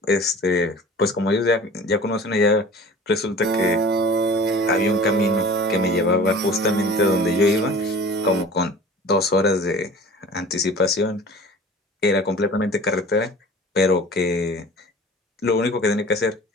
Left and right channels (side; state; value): both; normal; correlation 0.42